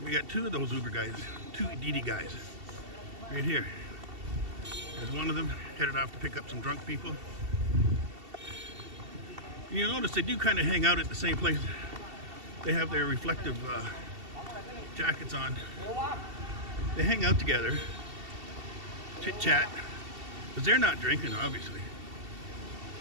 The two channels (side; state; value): left; late; 2.7 ms